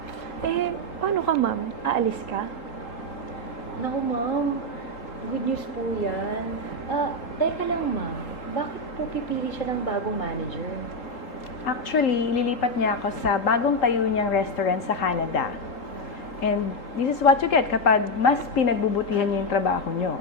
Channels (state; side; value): late; right; 3.8 ms